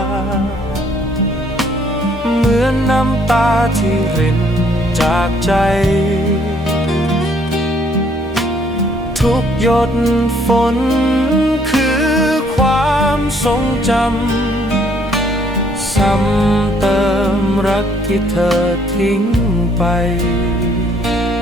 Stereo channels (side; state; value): both; normal; correlation 0.64